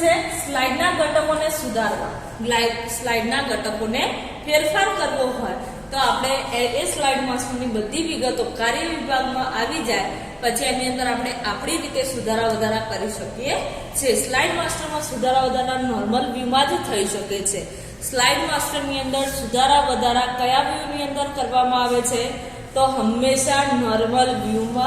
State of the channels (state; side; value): identical; both; correlation 1.00